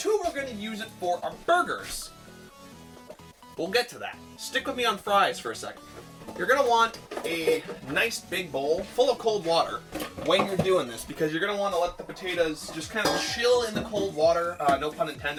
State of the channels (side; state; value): both; identical; correlation 1.00